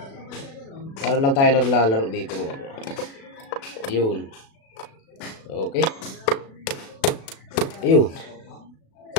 Para lang tayo naglalaro dito mga bro. Yun. Okay. Ayun.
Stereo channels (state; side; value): late; right; 36 ms